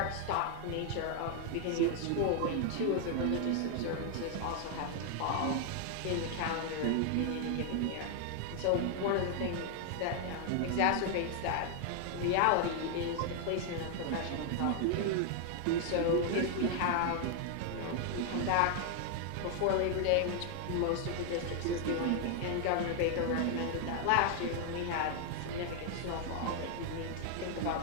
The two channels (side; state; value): both; different; correlation 0.00